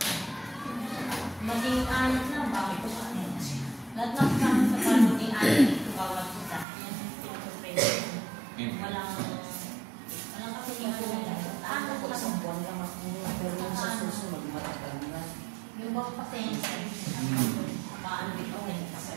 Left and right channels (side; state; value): left; drops out; at 6.7 s